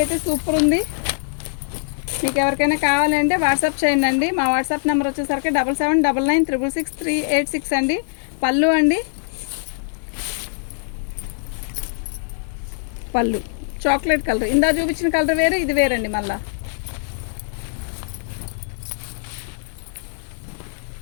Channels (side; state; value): right; silent; digital silence